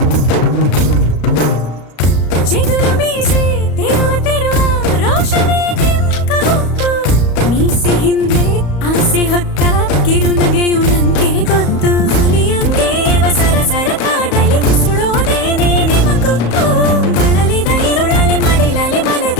ಚಿಗುರು ಮೀಸೆ ತಿರುವ ರೋಷವೇ ನಿಂಕ ಗೊತ್ತು, ಮೀಸೆ ಹಿಂದೆ ಆಸೆ ಹೊತ್ತ ಕಿರುನಗೆಯು ನಂಗೆ ಗೊತ್ತು. ಹುಲಿಯಂಗೆ ಸರಸರ ಕಾಡಲಿ ಸುಳೋದೇನೆ ನಿಮಗೊತ್ತು, ಬಳಲಿದ ಇರುಳಲಿ ಮಡಿಲಲಿ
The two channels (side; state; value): right; late; 34 ms